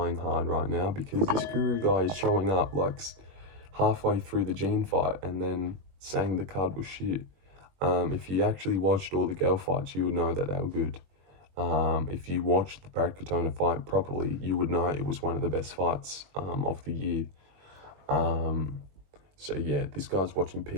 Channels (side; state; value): left; late; 21 ms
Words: hard right now, because this Guru guy is showing up like halfway through the Gene fight and then saying the card was shit. If you actually watched all the girl fights, you would know that they were good. If you watched the Brad Katona fight properly, you would know it was one of the best fights of the year. So yeah, this guy's watching